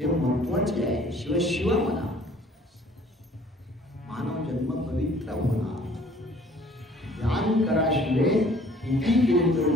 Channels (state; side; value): normal; both; correlation 0.55